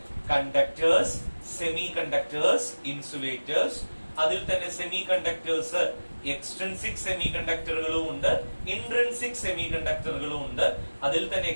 കണ്ടക്ടേഴ്സ്, സെമി കണ്ടക്ടേഴ്സ്, ഇൻസുലേറ്റേഴ്സ്. അതിൽ തന്നെ സെമി കണ്ടക്ടേഴ്സ് എക്സ്ട്രിൻസിക് സെമി കണ്ടക്ടറുകളും ഉണ്ട്, ഇൻട്രിൻസിക് സെമി കണ്ടക്ടറുകളും ഉണ്ട്. അതിൽ തന്നെ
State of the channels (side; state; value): both; inverted; correlation -1.00